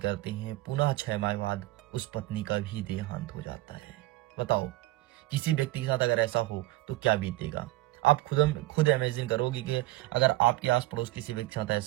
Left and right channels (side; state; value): left; quieter; 18.1 dB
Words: हैं, पुनः 6 माह बाद उस पत्नी का भी देहांत हो जाता है। बताओ किसी व्यक्ति के साथ अगर ऐसा हो तो क्या बीतेगा। आप खुद इमेजिन करोगे कि अगर आपके आस पड़ोस किसी व्यक्ति के साथ